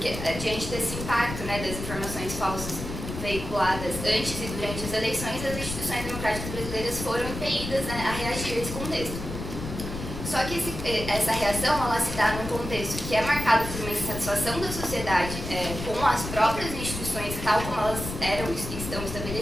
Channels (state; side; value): noise; left; rumble, 7 dB below the sound